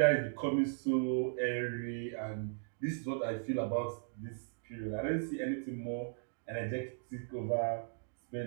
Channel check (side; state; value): left; silent; digital silence